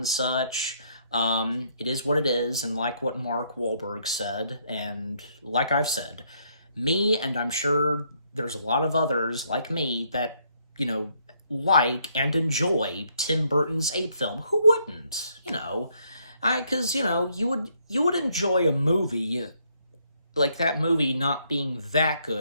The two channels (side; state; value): both; inverted; correlation -0.71